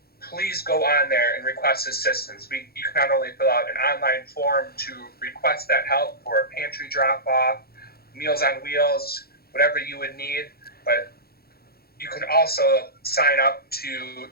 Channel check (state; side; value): late; right; 0.45 ms